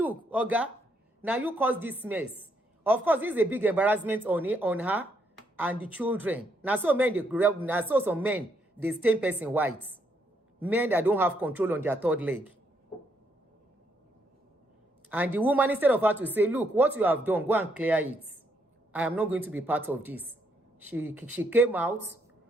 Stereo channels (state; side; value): normal; both; correlation 0.74